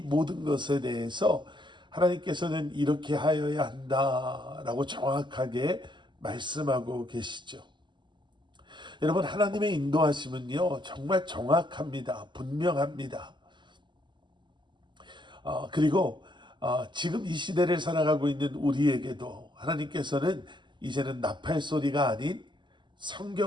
것에 대해서 하나님께서는 이렇게 하여야 한다라고 정확하게 말씀하고 계시죠. 여러분, 하나님의 인도하심은요 정말 정확합니다. 분명합니다. 그리고 지금 이 시대를 살아가고 있는 우리에게도 하나님께서는 이제는 나팔 소리가 아닌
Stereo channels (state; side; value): late; left; 0.22 ms